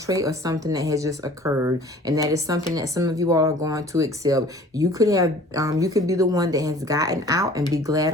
trait or something that has just occurred. And that is something that some of you all are going to accept. You could have, you could be the one that has gotten out and be glad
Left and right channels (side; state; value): both; normal; correlation 0.49